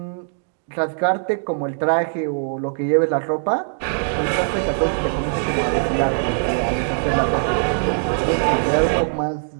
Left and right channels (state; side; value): silent; left; digital silence